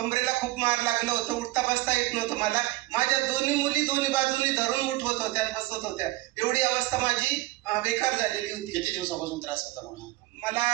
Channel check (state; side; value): quieter; left; 18.8 dB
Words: खूप मार लागलं होतं. उठता बसता येत नव्हतं मला. माझ्या दोन्ही मुली दोन्ही बाजूनी धरून उठवत होत्या, बसवत होत्या. एवढी अवस्था माझी बेकार झालेली होती. किती दिवसापासून त्रास होता म्हणून? मला